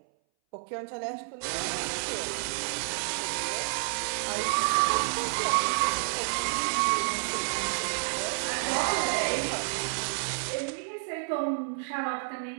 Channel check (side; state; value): left; silent; 58 dB below the other